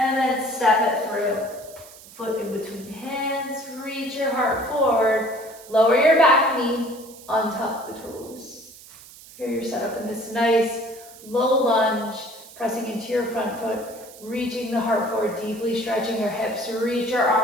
then step it through. Foot in between hands. Reach your heart forward. Lower your back knee, untuck the toes. Here you're set up in this nice low lunge, pressing into your front foot, reaching the heart forward, deeply stretching your hips. Reach your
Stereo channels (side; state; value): right; noise; hiss, 20 dB below the sound